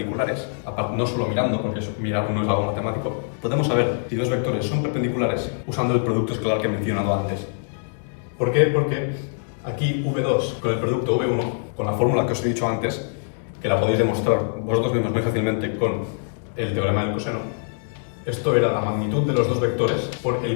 Aparte, no solo mirando, porque mirar no es algo matemático. Podemos saber si dos vectores son perpendiculares usando el producto escalar que he mencionado antes. ¿Por qué? Porque aquí V2 con el producto V1, con la fórmula que os he dicho antes, que la podéis demostrar vosotros mismos muy fácilmente con el teorema del coseno, esto era la magnitud de los dos vectores por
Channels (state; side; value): silent; right; digital silence